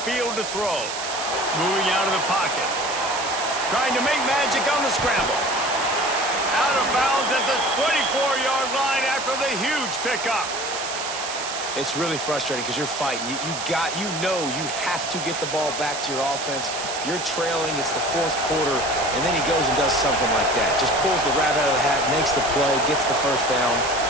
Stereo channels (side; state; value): right; noise; hiss, 6 dB below the sound